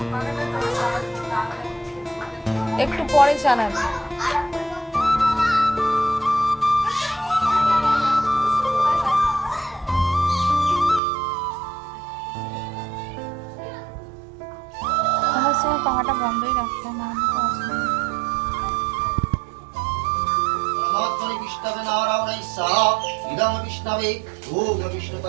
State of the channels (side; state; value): left; drops out; at 11.0 s